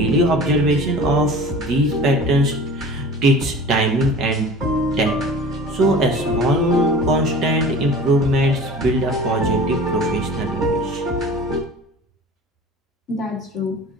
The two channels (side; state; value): both; normal; correlation 0.40